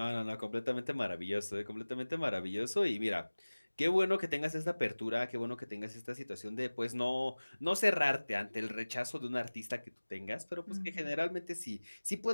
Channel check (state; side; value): inverted; both; correlation -1.00